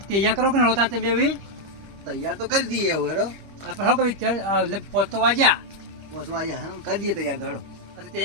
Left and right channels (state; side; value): late; left; 25 ms